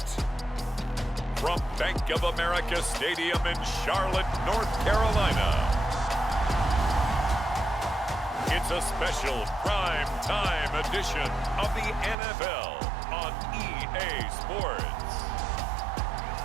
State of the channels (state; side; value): drops out; left; at 12.2 s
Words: from Bank of America Stadium in Charlotte, North Carolina, it's a special prime time edition of the NFL on EA Sports.